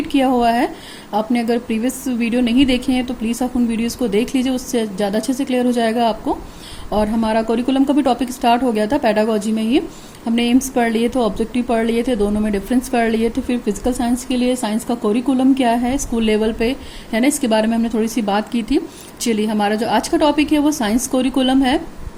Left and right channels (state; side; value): identical; both; correlation 1.00